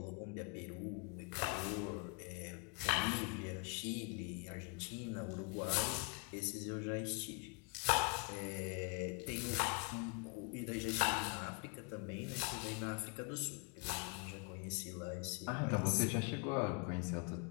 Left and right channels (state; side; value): quieter; right; 32.9 dB